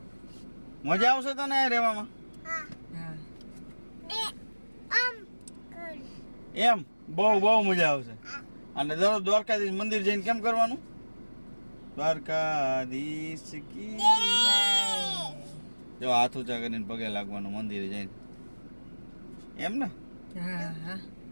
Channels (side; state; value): both; inverted; correlation -1.00